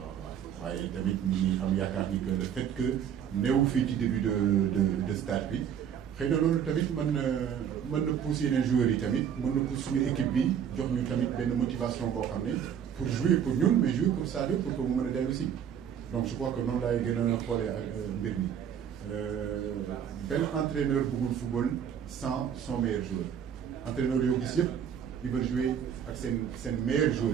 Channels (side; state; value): left; quieter; 8.6 dB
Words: waaye tamit ñi am yaakaar ni que le fait que néew fii ci début de stage bi xëy na loolu tamit mën na pousser yeneen joueurs yi tamit mën na pousser suñu équipe bi jox ñu tamit benn motivation boo xam ne pour jouer pour ñun mais jouer pour Sadio pour que mu mën a dellu si donc je crois que noonu laay gën a xoolee ak mbir mi benn entraîneur bëggul football sans son meilleur joueur entraîneur yoo gis yëpp ils veulent jouer ak seen meilleurs joueurs